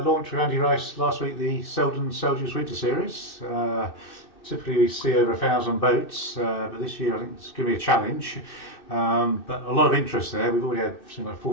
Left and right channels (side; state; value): right; late; 2.6 ms